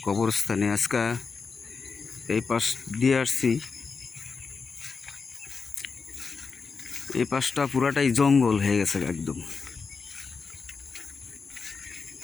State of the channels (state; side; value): quieter; right; 5.0 dB